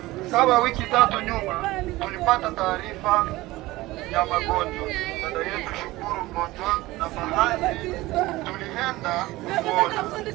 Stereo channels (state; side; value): quieter; left; 18.8 dB